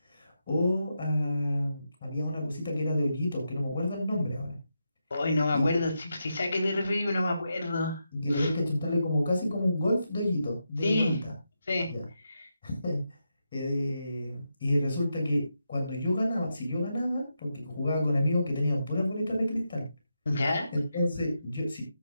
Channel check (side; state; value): both; inverted; correlation -0.85